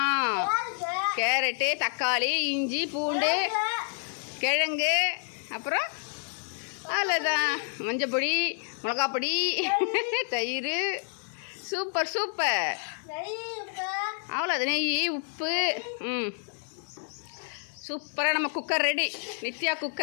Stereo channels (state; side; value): silent; right; 59 dB below the other